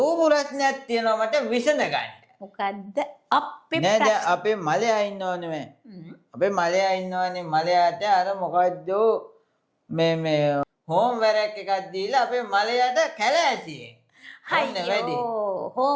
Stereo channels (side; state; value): both; identical; correlation 1.00